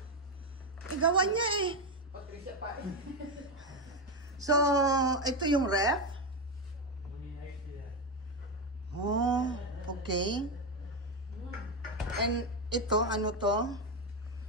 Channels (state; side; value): normal; both; correlation 0.10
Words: Igawan niya eh. Patricia Pie. So, ito yung ref. Oh, okay. And ito, ano to?